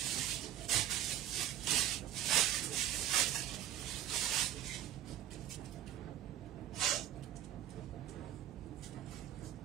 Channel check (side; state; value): left; quieter; 11.8 dB